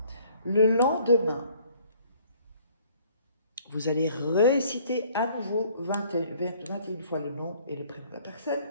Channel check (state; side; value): inverted; both; correlation -0.58